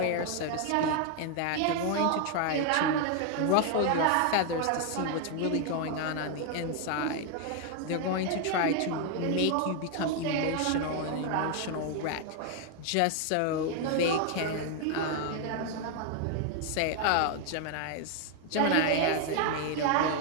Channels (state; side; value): different; both; correlation 0.01